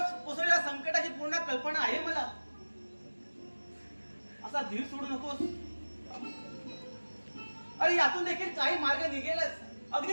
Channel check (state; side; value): inverted; both; correlation -1.00